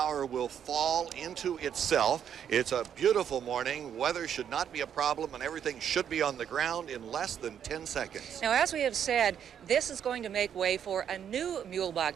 will fall into itself. It's a beautiful morning. Weather should not be a problem, and everything should be on the ground in less than 10 seconds. Now, as we have said, this is going to make way for a new Muehlebach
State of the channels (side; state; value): left; quieter; 8.8 dB